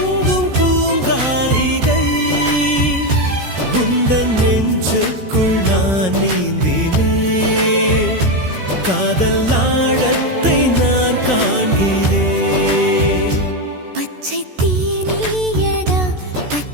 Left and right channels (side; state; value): left; late; 14 ms